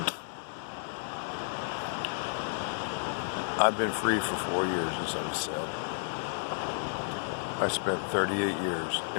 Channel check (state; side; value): silent; right; 56 dB below the other